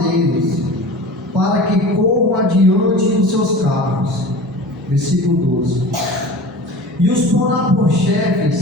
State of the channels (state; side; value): normal; both; correlation 0.36